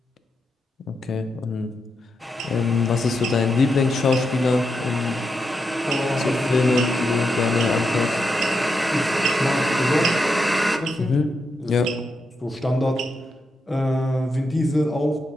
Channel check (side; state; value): both; normal; correlation 0.84